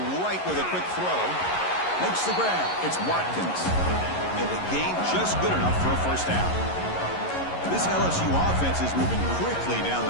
right with a quick throw. Makes the grab. It's Watkins. And the gain just good enough for a 1st down. This LSU offense is moving quickly down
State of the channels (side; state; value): right; late; 11 ms